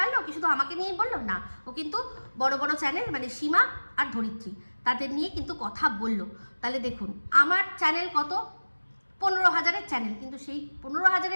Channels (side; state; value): both; inverted; correlation -1.00